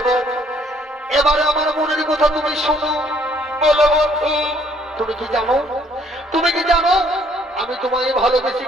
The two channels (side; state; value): both; normal; correlation 0.64